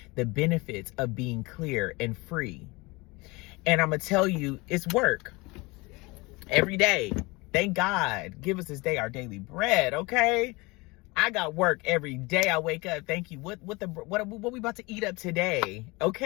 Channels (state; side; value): quieter; right; 24.5 dB